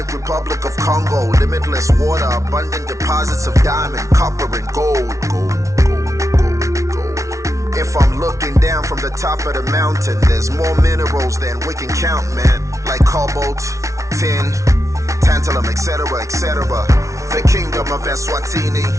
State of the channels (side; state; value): left; late; 0.15 ms